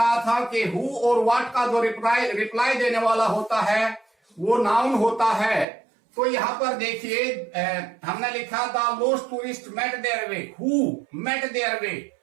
था कि हु और व्हाट का जो रिप्लाई देने वाला होता है वो नाउन होता है। तो यहां पर देखिए हमने लिखा the lost tourist met their way, who met their way,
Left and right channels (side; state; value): left; drops out; at 5.7 s